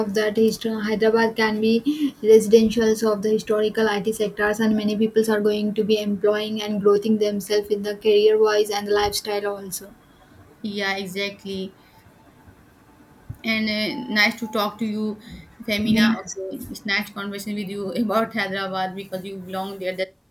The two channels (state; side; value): identical; both; correlation 1.00